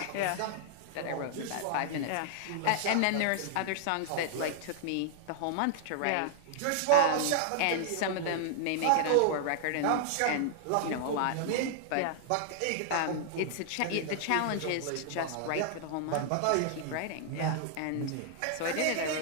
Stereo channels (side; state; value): both; different; correlation -0.01